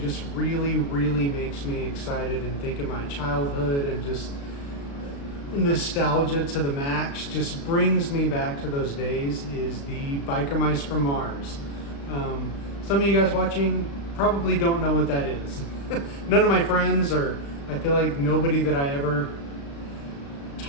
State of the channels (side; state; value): right; late; 36 ms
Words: really makes me excited and think of my childhood and just nostalgia to the max, just brings me back to those days, is the Biker Mice from Mars. Some of you guys watching probably don't know what that is. None of my friends, or I feel like nobody that I ever